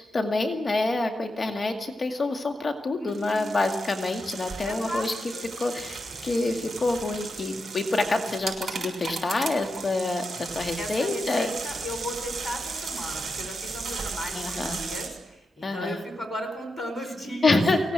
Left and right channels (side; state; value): both; normal; correlation 0.87